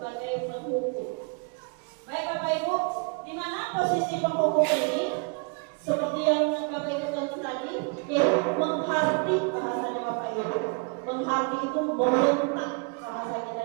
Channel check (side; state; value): left; quieter; 34.3 dB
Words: penghukum. Baik Bapak Ibu, di mana posisi penghukum ini? Seperti yang Bapak Ibu tentu tadi, yaitu menghardik bahasanya Bapak Ibu. Menghardik itu membentak bahasanya,